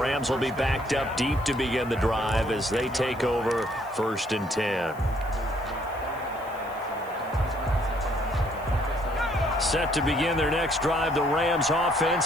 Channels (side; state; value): right; noise; hiss, 25 dB below the sound